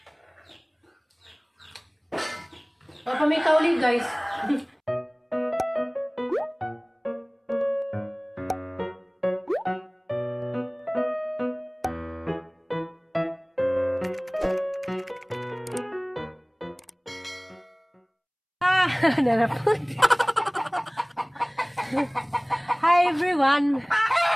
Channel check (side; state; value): both; identical; correlation 1.00